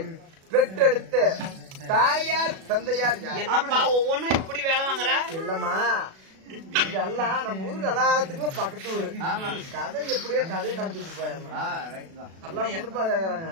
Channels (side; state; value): left; late; 37 ms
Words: பெற்றெடுத்த தாயார் தந்தையார் யார்? என்னப்பா ஒவ்வொன்னும் இப்படி வேலை வாங்குற? இல்லம்மா, இதெல்லாம் நம்ம ஊருக்கு எல்லாத்துக்குமே பக்கத்து ஊரு. கதை எப்படியோ கதையை நடத்திட்டு போயம்மா. எல்லாம் முன்னுப்பா கேக்குறாங்க.